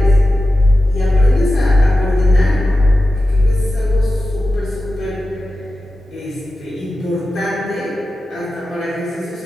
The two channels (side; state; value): both; normal; correlation 0.93